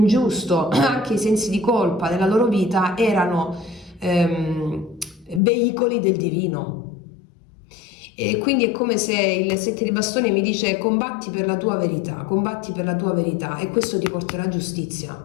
anche i sensi di colpa nella loro vita, erano veicoli del divino. E quindi è come se il 7 di bastoni mi dice combatti per la tua verità, combatti per la tua verità, e questo ti porterà giustizia,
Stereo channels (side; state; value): right; drops out; at 5.4 s